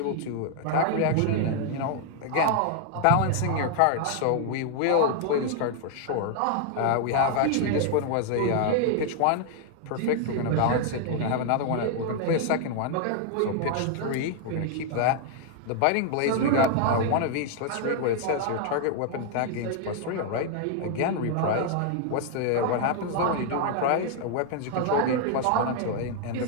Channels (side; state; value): both; different; correlation 0.00